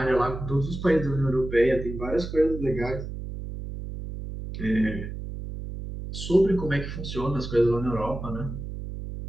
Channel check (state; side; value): noise; right; hum, 8 dB below the sound